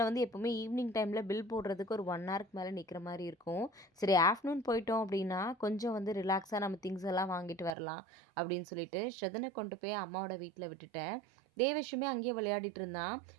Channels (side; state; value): left; drops out; at 7.8 s